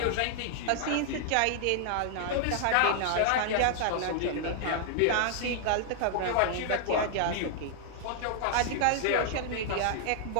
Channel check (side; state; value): both; different; correlation 0.00